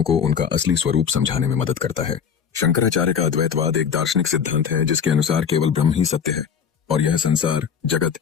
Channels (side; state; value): right; quieter; 7.2 dB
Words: को उनका असली स्वरूप समझाने में मदद करता है। शंकराचार्य का अद्वैतवाद एक दार्शनिक सिद्धांत है जिसके अनुसार केवल ब्रह्म ही सत्य है और यह संसार, जगत